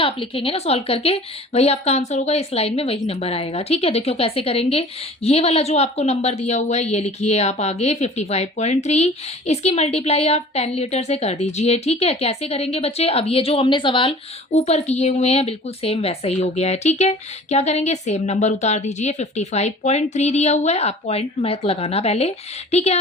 लिखेंगे ना सॉल्व करके वही आपका आंसर होगा, इस लाइन में वही नंबर आएगा। ठीक है, देखियो कैसे करेंगे, ये वाला जो आपको नंबर दिया हुआ है ये लिखिए आप आगे 55.3, इसकी मल्टीप्लाई आप 10 लीटर से कर दीजिए। ठीक है, कैसे करेंगे बच्चे, अब ये जो हमने सवाल ऊपर किए हुए हैं बिल्कुल सेम वैसा ही हो गया है। ठीक है, क्या करेंगे, सेम नंबर उतार दीजिए, 55.3 दिया हुआ है, आप पॉइंट मत लगाना पहले। ठीक है,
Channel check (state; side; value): normal; both; correlation 0.45